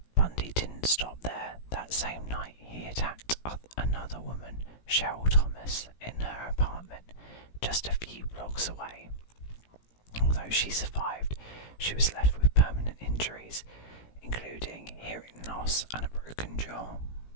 Bundy didn't stop there. That same night he attacked another woman, Cheryl Thomas, in her apartment just a few blocks away. Although she survived, she was left with permanent injuries, including hearing loss and a broken jaw.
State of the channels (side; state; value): right; late; 17 ms